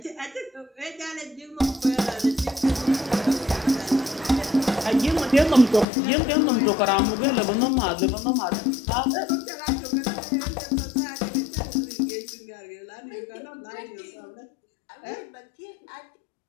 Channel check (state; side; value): drops out; right; at 5.9 s